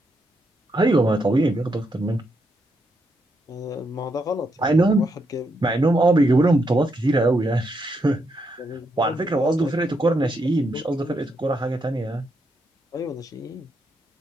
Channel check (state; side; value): normal; both; correlation 0.80